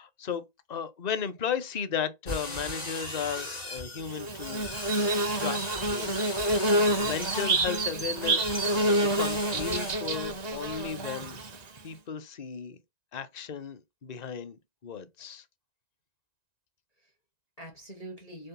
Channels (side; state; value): right; late; 1.9 ms